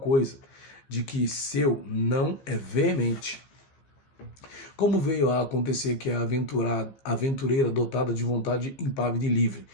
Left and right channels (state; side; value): late; right; 15 ms